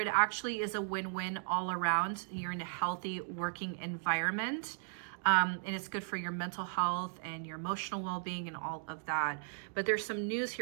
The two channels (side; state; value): left; silent; digital silence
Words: actually is a win-win all around. You're in a healthy working environment. And it's good for your mental health and your emotional well-being and all of that. But there's some news